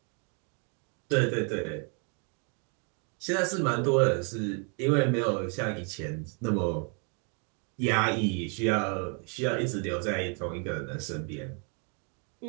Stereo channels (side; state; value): left; quieter; 38.3 dB